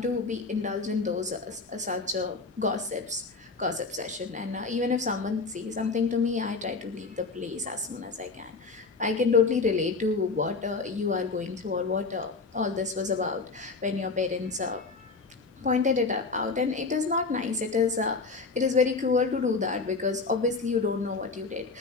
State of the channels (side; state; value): right; quieter; 4.2 dB